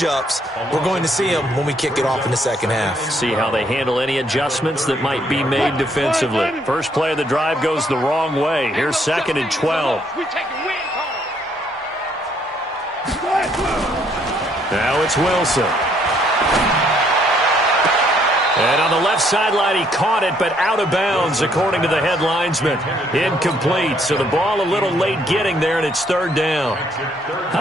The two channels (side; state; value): both; normal; correlation 0.68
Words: We're going to see them when we kick it off in the second half. See how they handle any adjustments that might be made defensively. First play of the drive goes the wrong way. Here's 2nd and 12. Now it's Wilson. And on the left sideline, he caught it, but out of bounds, according to the head linesman. Incomplete, so the ball a little late getting there, and it's 3rd down. How